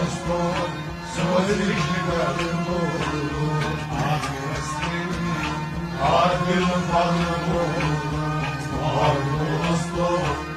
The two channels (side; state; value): both; identical; correlation 1.00